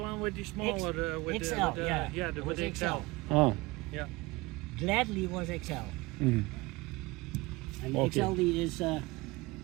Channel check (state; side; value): quieter; left; 22.4 dB